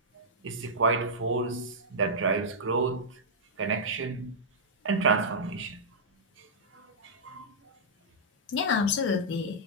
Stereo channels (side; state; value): both; normal; correlation -0.10